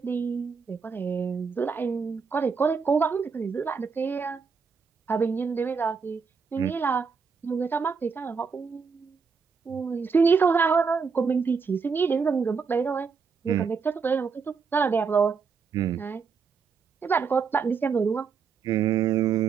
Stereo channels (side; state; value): left; quieter; 5.5 dB